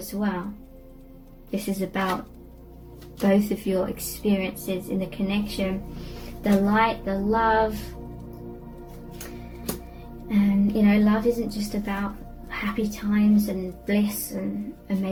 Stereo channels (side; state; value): both; identical; correlation 1.00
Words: well. This is about both of your experiences in the connection, the light, the love. And you know, love isn't just about happy times and bliss and